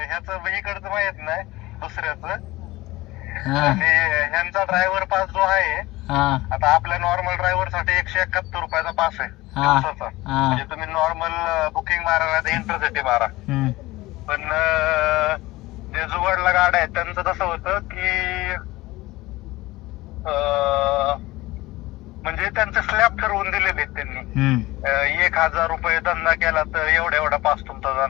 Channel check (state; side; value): quieter; right; 19.2 dB